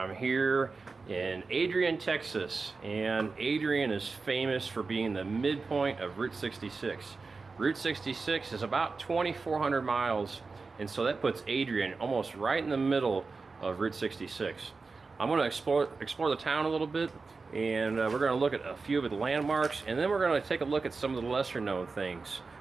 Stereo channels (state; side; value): quieter; left; 4.2 dB